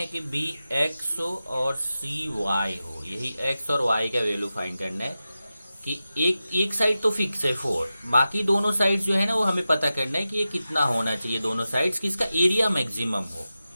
कि बी एक्स हो और सी वाई हो, यही एक्स और वाई का वैल्यू फाइंड करना है कि एक साइड तो फिक्स है 4, बाकी दोनों साइड्स जो है ना वो हमें पता करना है कि ये कितना होना चाहिए दोनों साइड्स कि इसका एरिया मैक्सिमम हो।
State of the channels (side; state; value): both; inverted; correlation -0.93